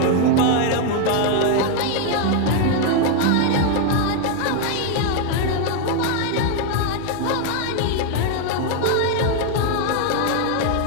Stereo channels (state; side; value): different; both; correlation 0.00